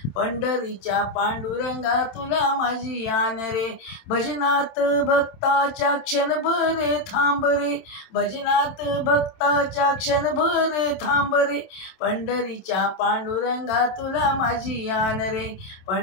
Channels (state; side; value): late; right; 27 ms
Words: पंढरीच्या पांडुरंगा तुला माझी आण रे. भजनात भक्ताच्या क्षणभरे थांब रे, भजनात भक्ताच्या क्षणभरे थांब रे, पंढरीच्या पांडुरंगा तुला माझी आण रे,